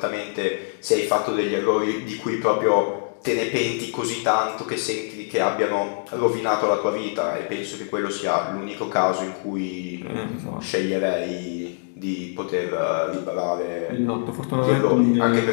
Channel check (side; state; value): right; silent; digital silence